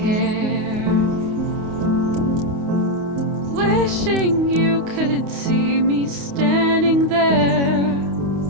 wishing you could see me standing there.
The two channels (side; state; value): left; late; 28 ms